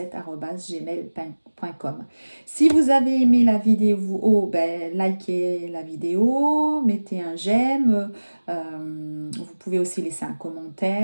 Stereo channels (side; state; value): both; inverted; correlation -1.00